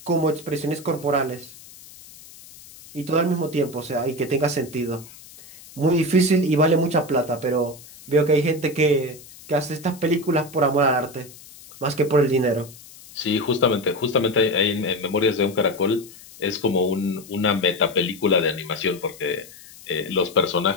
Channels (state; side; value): noise; left; hiss, 20 dB below the sound